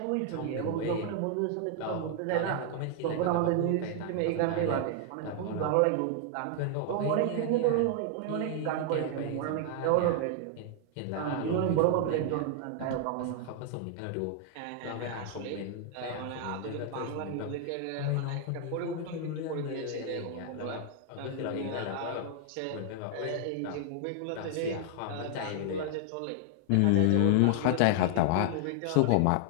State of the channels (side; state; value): both; different; correlation 0.00